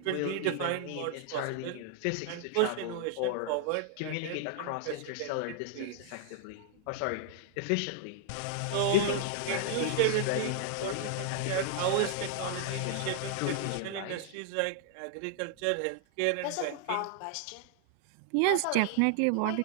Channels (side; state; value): both; different; correlation 0.00